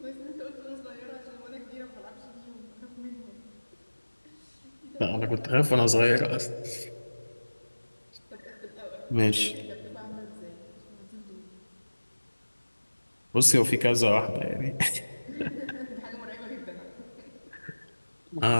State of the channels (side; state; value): both; inverted; correlation -1.00